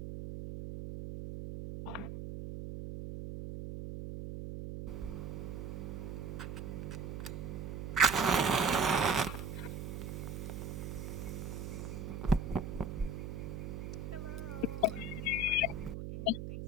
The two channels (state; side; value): noise; right; hum, 6 dB below the sound